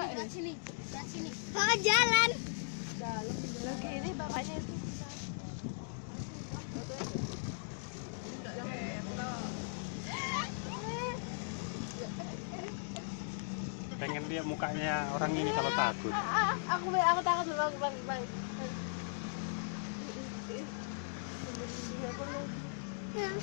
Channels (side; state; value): right; silent; digital silence